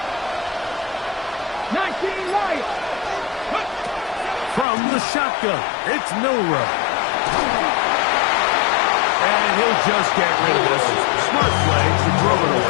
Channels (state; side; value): drops out; right; at 4.7 s